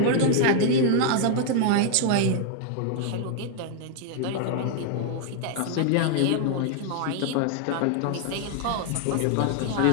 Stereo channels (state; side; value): different; both; correlation 0.00